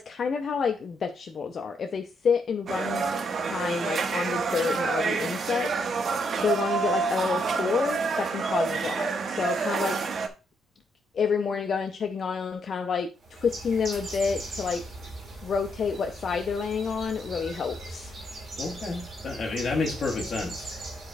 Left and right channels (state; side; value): normal; both; correlation 0.76